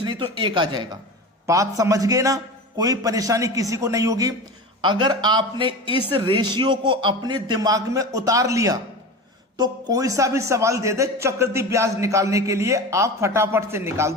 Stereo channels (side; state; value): both; normal; correlation 0.29